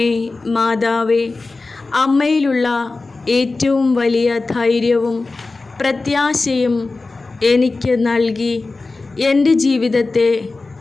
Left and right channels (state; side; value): quieter; right; 3.6 dB